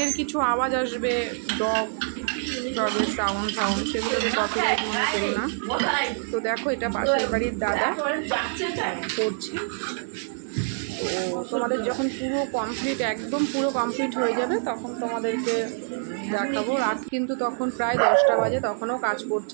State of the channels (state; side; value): silent; left; 61 dB below the other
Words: কিছু আওয়াজ আসবে, ডগের সাউন্ড সেগুলোকে কপিরাইট মনে করো না। তো দেখো, এটা পাশের বাড়ির দাদা করছে। তো তোমাদের যখন একদম পুরো কমপ্লিট হয়ে যাবে তখন তোমাদেরকে দেখাবো। রাত কিন্তু তখন প্রায় 10টা বাজে, তখনও কাজ